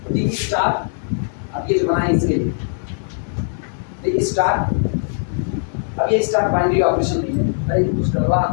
3 स्टार अब ये जो बनाए इसके लिए द स्टार, अब ये स्टार बाइनरी ऑपरेशन नहीं है, अरे कुछ करवा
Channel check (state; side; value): silent; right; digital silence